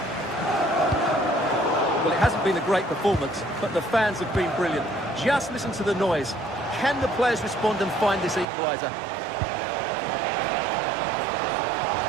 Well, it hasn't been a great performance, but the fans have been brilliant. Just listen to the noise. Can the players respond and find this equaliser?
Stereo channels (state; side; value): drops out; left; at 8.5 s